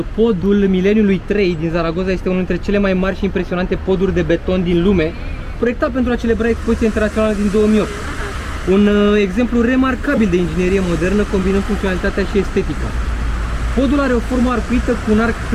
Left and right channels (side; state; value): both; identical; correlation 1.00